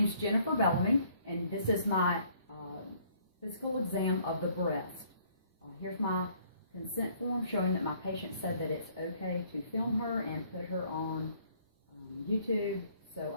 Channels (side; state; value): both; inverted; correlation -0.62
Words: is Jennifer Bellamy, and this is my physical exam of the breast. Here's my consent form showing that my patient said that it's okay to film her and put her on YouTube so